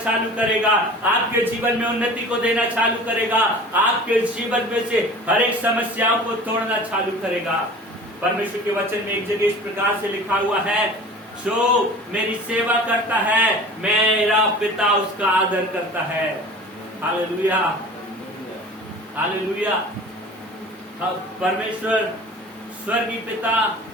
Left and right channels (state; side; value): normal; both; correlation 0.41